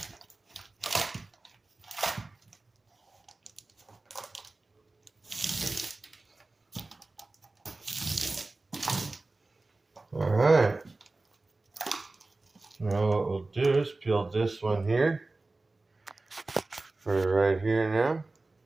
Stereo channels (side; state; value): left; quieter; 3.2 dB